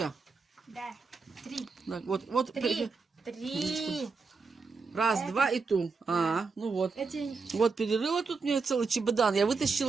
Да, 3. Так, вот. 3. 3. Раз, два и ту. Ну вот. Эти... Вот перерыла тут мне целый чемодан. Я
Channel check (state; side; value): quieter; left; 4.6 dB